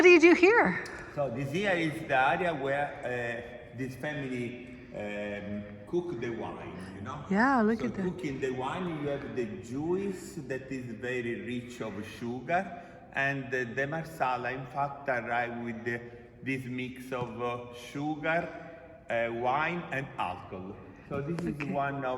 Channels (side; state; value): both; identical; correlation 1.00